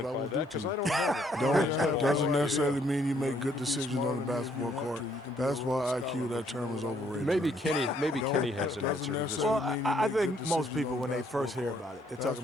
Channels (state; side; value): normal; both; correlation 0.68